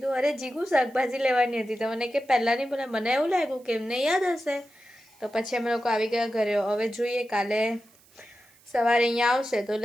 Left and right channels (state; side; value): noise; right; hiss, 29 dB below the sound